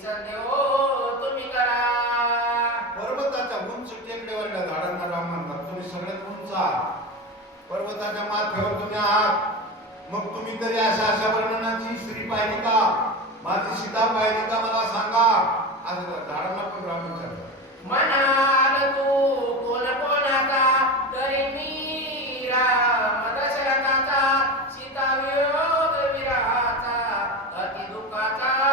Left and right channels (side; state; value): both; normal; correlation 0.23